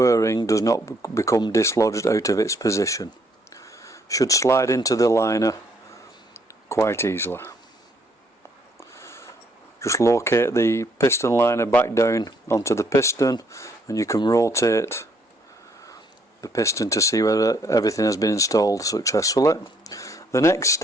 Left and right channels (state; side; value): normal; both; correlation 0.69